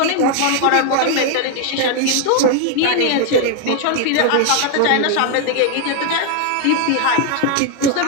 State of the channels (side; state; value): both; different; correlation 0.01